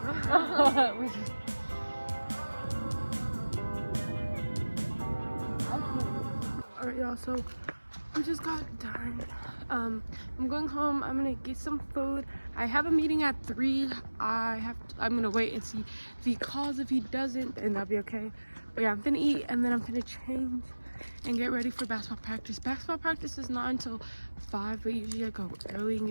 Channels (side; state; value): both; inverted; correlation -1.00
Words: We just... Alright, y'all, so we just got done. I'm going home. I'm gonna get some food. I have a meeting at 3. I'm gonna wait and see if he calls. If he doesn't, then that'll be okay. But yeah, I'm gonna eat and then I'm gonna change and get ready for basketball practice. Basketball practice is not until 5, but usually I go early and